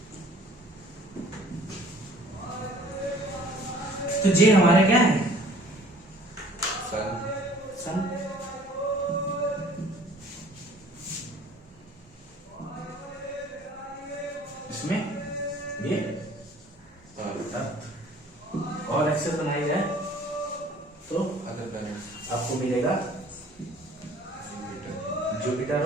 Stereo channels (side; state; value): both; normal; correlation 0.53